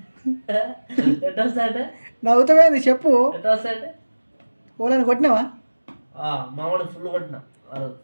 ఎట్లా వస్తాయంటే నవ్వుతావేంది చెప్పు. ఎట్లా వస్తాయంటే ఓలని కొట్టినావా? మావాడు ఫుల్ కొట్టిన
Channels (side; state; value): both; inverted; correlation -1.00